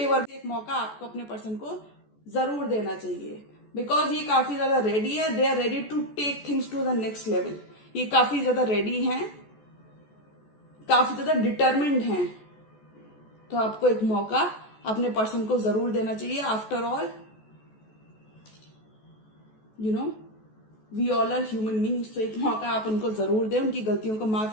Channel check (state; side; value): late; right; 14 ms